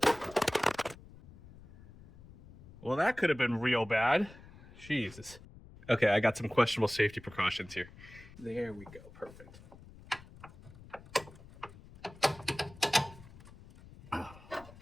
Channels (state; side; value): noise; left; rumble, 20 dB below the sound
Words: Well, that could have been real bad. Jesus. Okay, I got some questionable safety precautions here. There we go, perfect.